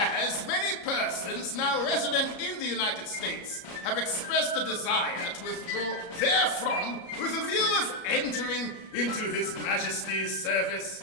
many persons now resident in the United States have expressed a desire to withdraw therefrom with a view of entering into His Majesty's service,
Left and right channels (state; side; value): late; right; 33 ms